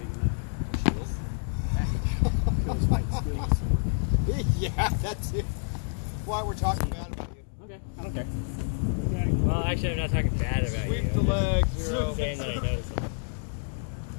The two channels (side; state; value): right; silent; digital silence